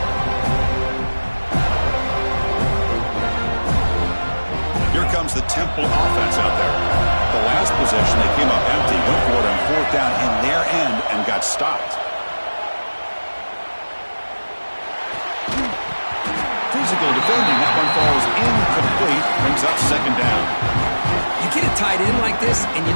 Comes the Temple offense out there. The last possession, they came up empty, went for it on fourth down in their end and got stopped. Physical defending, that one falls incomplete, brings up 2nd down. You get a tight end like this, and you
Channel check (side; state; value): both; inverted; correlation -1.00